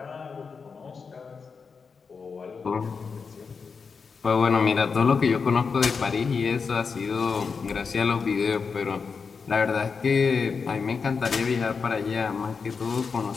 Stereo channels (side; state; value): right; quieter; 5.3 dB